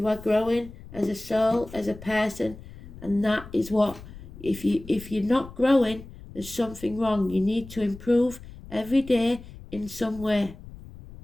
are growing as a soul, as a person, and that is what, if you're not growing, there's something wrong. You need to improve every day in some way.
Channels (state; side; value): noise; left; rumble, 16 dB below the sound